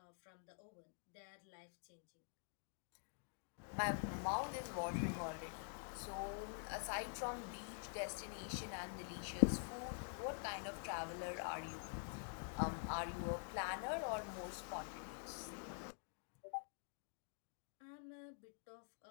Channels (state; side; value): silent; right; digital silence